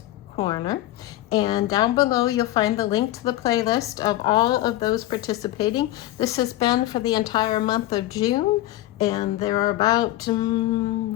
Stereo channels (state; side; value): quieter; right; 15.7 dB